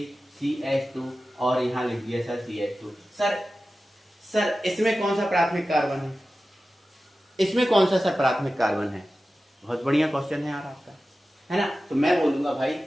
CH2 और यहाँ लिख दिया सर CH2। सर इसमें कौन सा प्राथमिक कार्बन है? इसमें कौन सा सर प्राथमिक कार्बन है? बहुत बढ़िया क्वेश्चन है यार आपका, है ना? तो मैं बोलूंगा भाई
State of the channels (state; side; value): normal; both; correlation 0.94